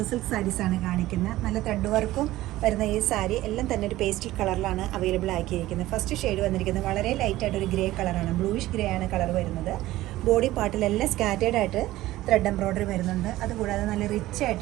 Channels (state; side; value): quieter; left; 16.3 dB